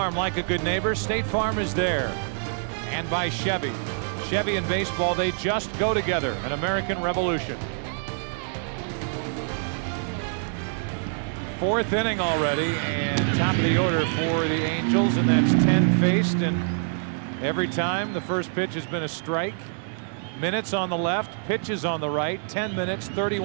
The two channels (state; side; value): silent; left; 61 dB below the other